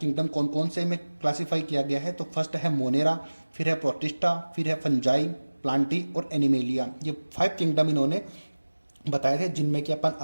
कौन कौन से में क्लासीफाई किया गया है, तो फर्स्ट है मोनेरा, फिर है प्रोटिस्टा, फिर है फंजाई, प्लांटी और एनिमेलिया। ये 5 किंगडम इन्होंने बताए थे, जिनमें कि अपन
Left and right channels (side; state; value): both; inverted; correlation -1.00